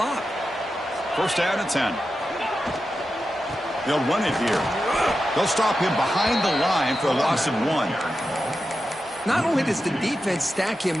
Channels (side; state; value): both; normal; correlation 0.90